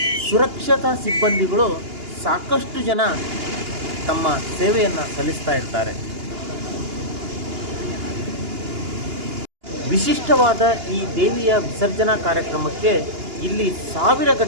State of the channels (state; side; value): late; left; 2.9 ms